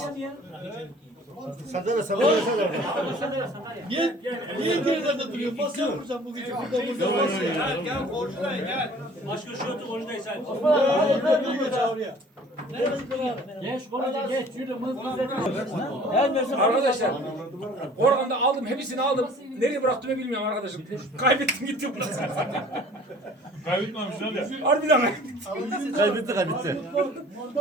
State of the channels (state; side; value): normal; both; correlation 0.50